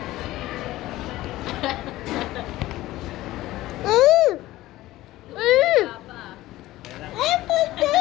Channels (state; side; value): quieter; right; 16.6 dB